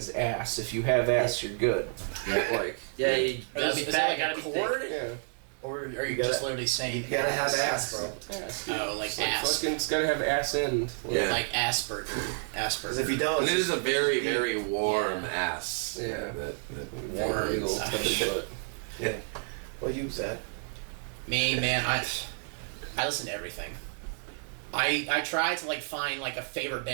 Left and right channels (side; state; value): left; silent; 58 dB below the other